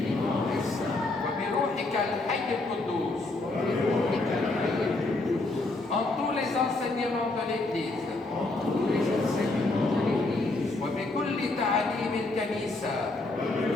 وبروحك الحي القدوس. En tous les enseignements de l'Église. وبكل تعاليم الكنيسة.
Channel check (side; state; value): right; quieter; 3.0 dB